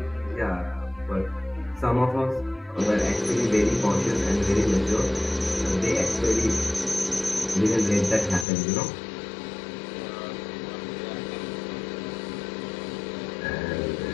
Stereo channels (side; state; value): right; drops out; at 8.5 s